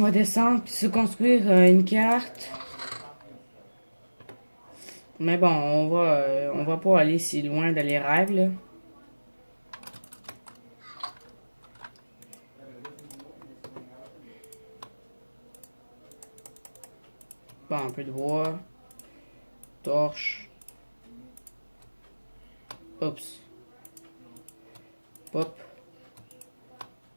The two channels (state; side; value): inverted; both; correlation -1.00